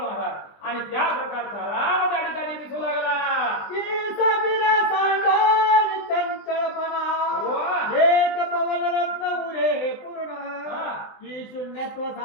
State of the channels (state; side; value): late; right; 20 ms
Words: आणि त्या प्रकारचा राम त्या ठिकाणी दिसू लागला. की सबिरा सांडोनी चंचलपणा एक पवन रत्न उरे पूर्ण. की शून्यत्व